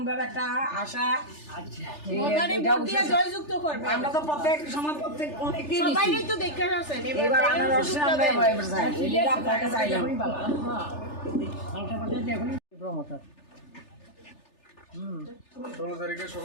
একটা আশা জয়যুক্ত করবো। আমরা তো প্রত্যেক সময় প্রত্যেক অনেকদিন তো দেখে আসছেন, এবার আনারসে আমরা আপনাকে চাইলাম। 16 তারিখে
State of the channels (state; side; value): late; right; 3.4 ms